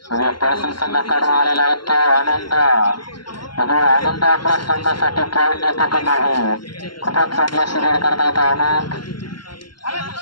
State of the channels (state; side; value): late; right; 0.72 ms